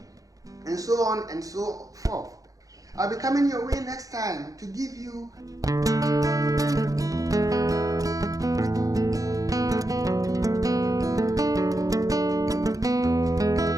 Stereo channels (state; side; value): late; left; 0.17 ms